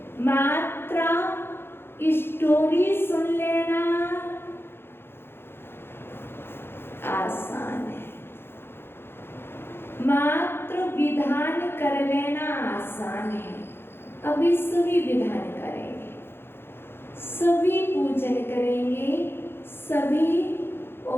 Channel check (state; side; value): late; right; 0.11 ms